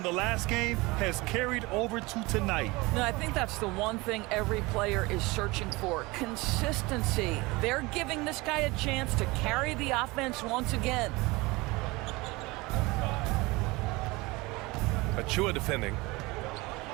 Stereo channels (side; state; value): left; quieter; 23.1 dB